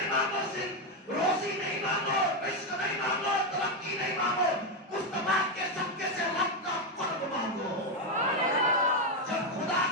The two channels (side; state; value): both; normal; correlation 0.06